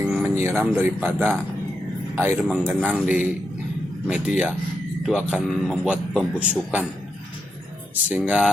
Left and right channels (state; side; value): normal; both; correlation 0.84